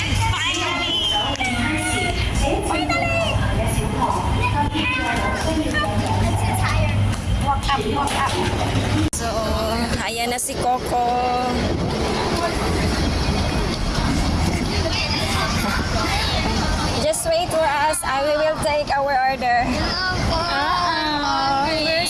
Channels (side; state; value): both; identical; correlation 1.00